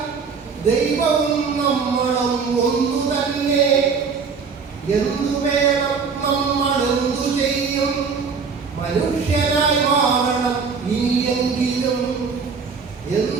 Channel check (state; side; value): quieter; left; 5.4 dB